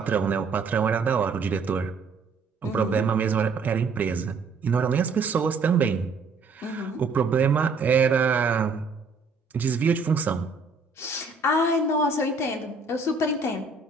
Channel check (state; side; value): quieter; left; 4.2 dB